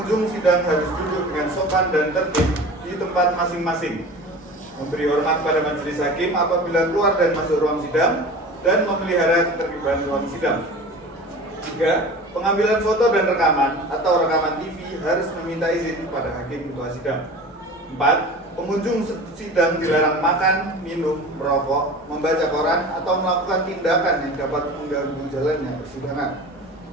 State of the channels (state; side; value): normal; both; correlation 0.37